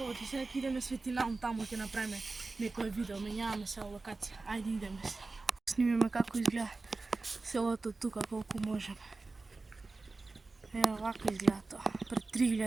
сега идеме светлинаум таму, ќе направиме некој видео, менјаваме се локација. Ајде идеме се. Снимиме како изгледа селото тука, колку можеме. Ево, вака изгледа тоа, пред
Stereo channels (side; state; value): left; quieter; 3.6 dB